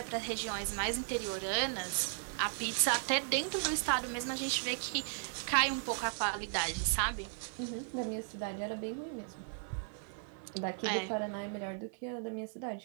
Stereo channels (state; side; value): silent; left; 54 dB below the other